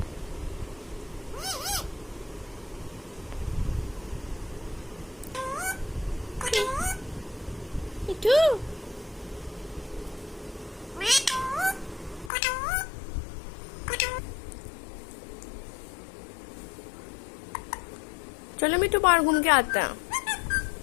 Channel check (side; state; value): right; drops out; at 12.3 s